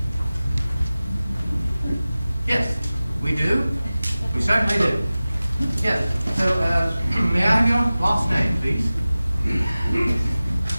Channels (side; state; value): both; inverted; correlation -0.97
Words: Yes, we do. We certainly do. Yes, so, may I have your last name, please?